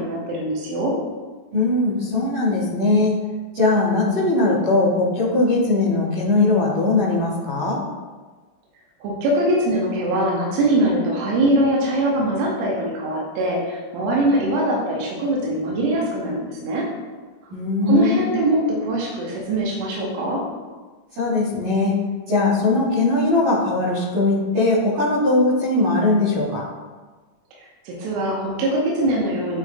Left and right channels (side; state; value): left; late; 21 ms